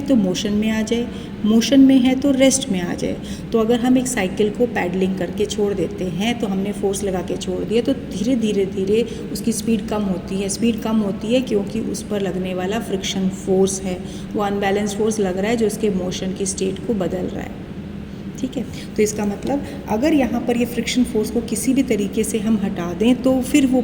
तो मोशन में आ जाए, मोशन में है तो रेस्ट में आ जाए। तो अगर हम एक साइकिल को पैडलिंग करके छोड़ देते हैं, तो हमने फोर्स लगा के छोड़ दिया, तो धीरे धीरे धीरे उसकी स्पीड कम होती है। स्पीड कम होती है क्योंकि उस पर लगने वाला फ्रिक्शन फोर्स है, वो अनबैलेंस्ड फोर्स लग रहा है जो उसके मोशन की स्टेट को बदल रहा है। ठीक है, तो इसका मतलब अगर यहाँ पर ये फ्रिक्शन फोर्स को किसी भी तरीके से हम हटा दें तो फिर वो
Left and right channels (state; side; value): identical; both; correlation 1.00